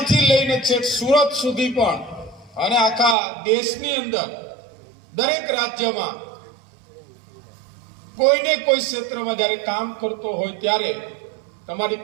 લઈને છેક સુરત સુધી પણ અને આખા દેશની અંદર દરેક રાજ્યમાં કોઈને કોઈ ક્ષેત્રમાં જ્યારે કામ કરતો હોય ત્યારે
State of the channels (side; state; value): left; drops out; at 3.2 s